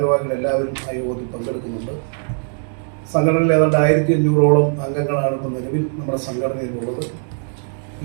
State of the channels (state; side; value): silent; left; 55 dB below the other